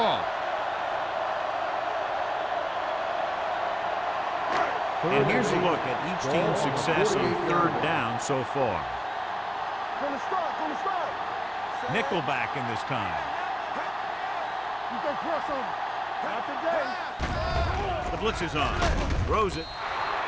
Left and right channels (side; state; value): both; identical; correlation 1.00